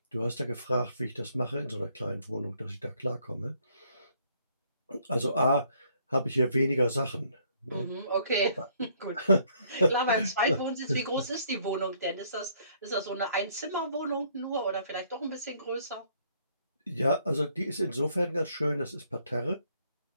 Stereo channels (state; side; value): inverted; both; correlation -0.66